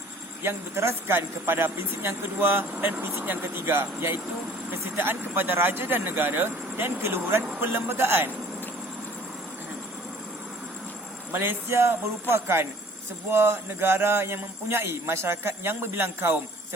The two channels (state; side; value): normal; both; correlation 0.53